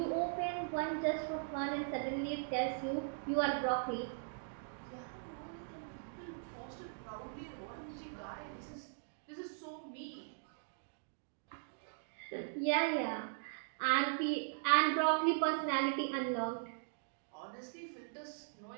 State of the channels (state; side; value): silent; left; digital silence